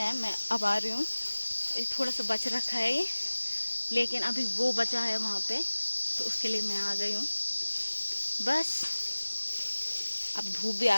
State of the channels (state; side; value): inverted; both; correlation -1.00